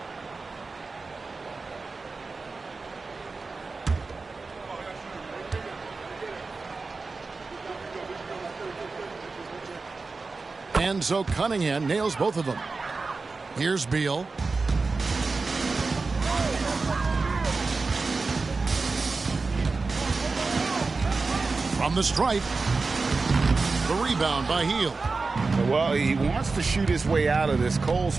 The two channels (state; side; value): quieter; left; 4.0 dB